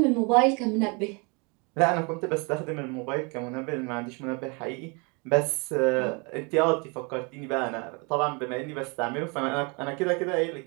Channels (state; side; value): quieter; left; 31.6 dB